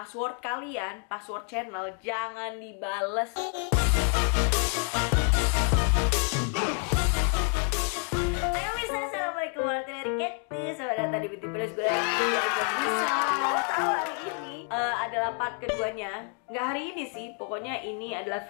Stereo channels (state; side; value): quieter; right; 38.5 dB